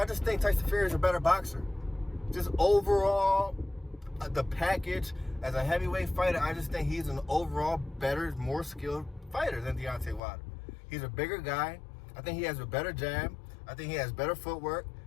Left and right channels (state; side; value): drops out; right; at 10.2 s